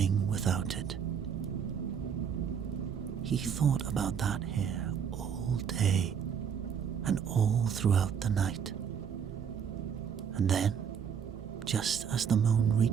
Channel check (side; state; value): left; quieter; 7.5 dB